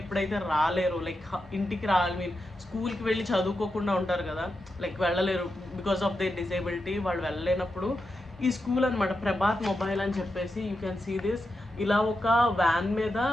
రాలేరు, లైక్ ఇంటికి రాలి స్కూల్కి వెళ్ళి చదువుకోకుండా ఉంటారు కదా, లైక్ వెళ్ళలేరు బికాస్ ఆఫ్ దే డిసేబిలిటీ. వాళ్ళు వెళ్ళలేనప్పుడు ఈ స్కూల్ అనమాట ప్రభాత్ మొబైల్ అని చెప్పేసి, యూ కెన్ సీ దిస్. ఇలా ఒక వ్యాన్ మీద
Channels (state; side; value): normal; both; correlation 0.88